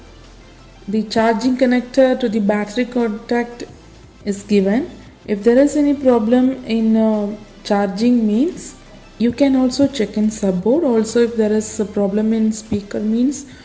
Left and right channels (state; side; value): identical; both; correlation 1.00